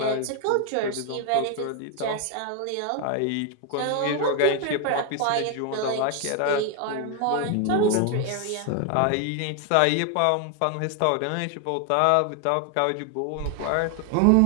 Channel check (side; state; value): both; different; correlation 0.01